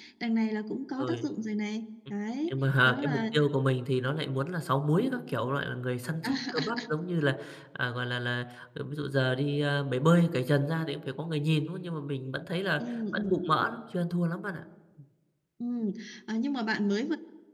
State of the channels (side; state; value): both; identical; correlation 1.00